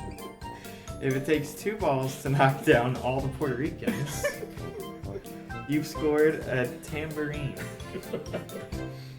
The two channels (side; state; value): both; identical; correlation 1.00